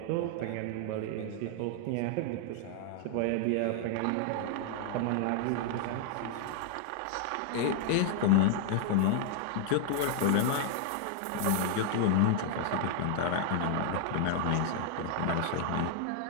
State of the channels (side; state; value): both; different; correlation 0.00